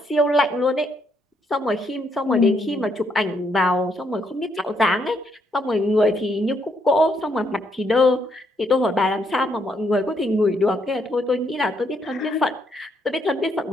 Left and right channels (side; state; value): both; normal; correlation 0.74